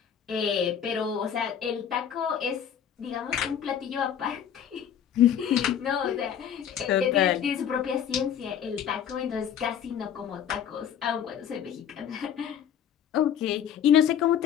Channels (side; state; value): right; quieter; 8.9 dB